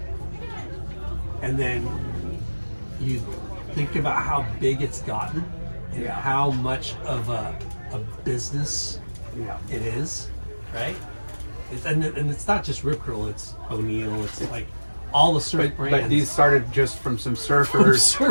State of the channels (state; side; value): inverted; both; correlation -1.00